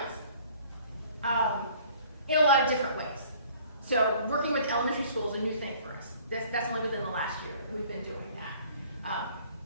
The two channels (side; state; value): both; inverted; correlation -0.53